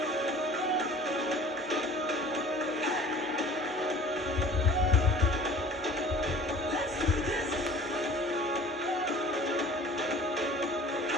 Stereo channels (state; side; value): normal; both; correlation 0.46